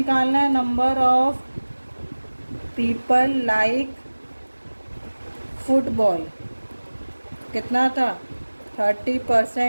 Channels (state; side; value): inverted; both; correlation -1.00